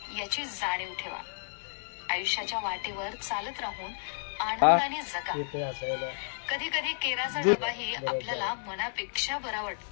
याची जाणीव ठेवा. आयुष्याच्या वाटेवर चालत राहून आनंदाने जगा. कधी कधी केराचा डबाही आपल्याला मनापेक्षा बरा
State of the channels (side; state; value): right; silent; digital silence